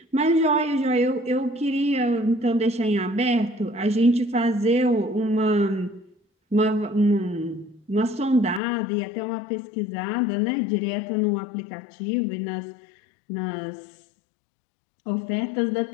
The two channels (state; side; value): drops out; right; at 8.6 s